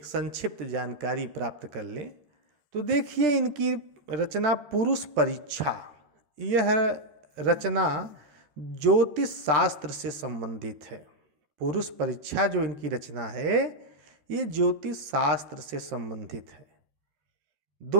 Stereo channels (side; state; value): left; late; 13 ms